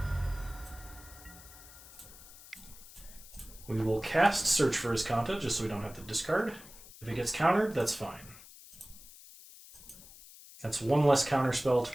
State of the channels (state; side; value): noise; left; hiss, 19 dB below the sound